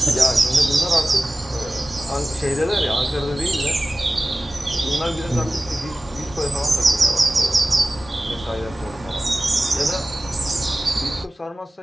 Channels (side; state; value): both; normal; correlation 0.96